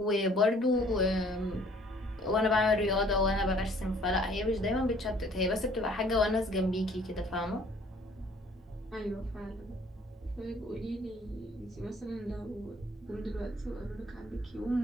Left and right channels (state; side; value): normal; both; correlation 0.57